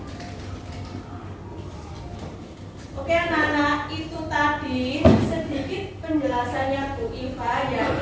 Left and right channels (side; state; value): both; identical; correlation 1.00